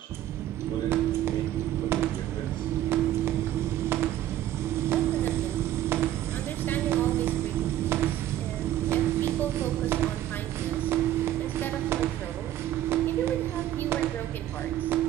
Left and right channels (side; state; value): left; quieter; 12.9 dB